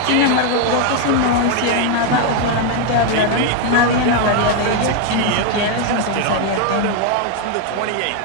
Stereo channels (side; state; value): both; different; correlation 0.01